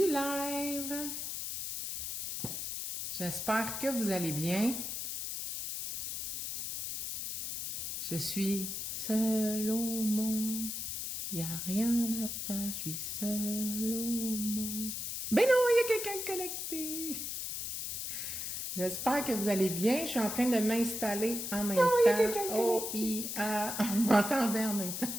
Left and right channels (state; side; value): noise; left; hiss, 4 dB below the sound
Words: live! J'espère que vous allez bien. Je suis seule au monde. Y a rien à faire, je suis seule au monde. Ben non, il y a quelqu'un de connecté! J'espère que vous allez bien. Je suis en train de m'installer en même temps. O-I-A. On m'entendait en même